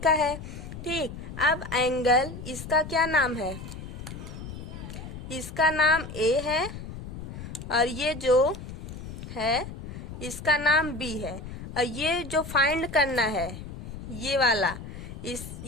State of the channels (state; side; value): noise; left; rumble, 10 dB below the sound